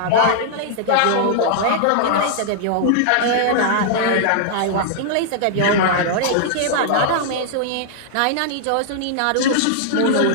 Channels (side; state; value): both; different; correlation -0.01